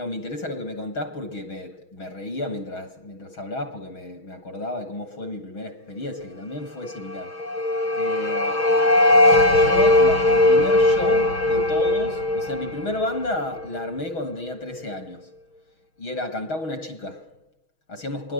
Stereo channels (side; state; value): right; late; 6.3 ms